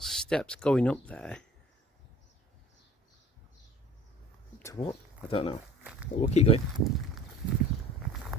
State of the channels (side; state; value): both; normal; correlation 0.48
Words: steps going up there. To what? I don't know. But we'll keep going.